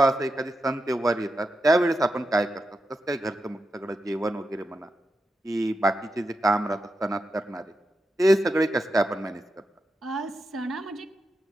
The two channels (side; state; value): both; normal; correlation 0.88